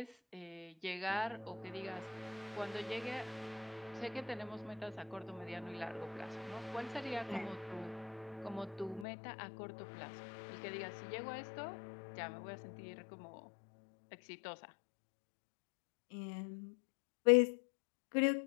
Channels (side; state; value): right; drops out; at 9.1 s